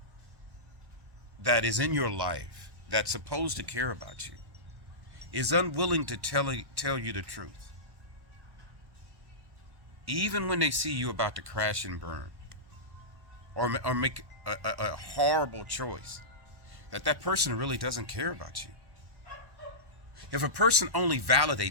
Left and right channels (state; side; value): late; left; 1.1 ms